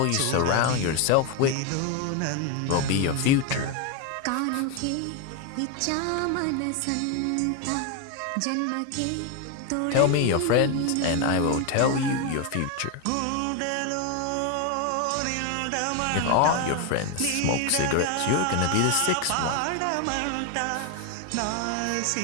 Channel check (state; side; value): different; both; correlation 0.01